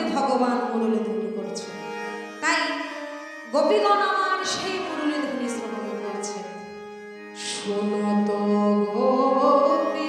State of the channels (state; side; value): identical; both; correlation 1.00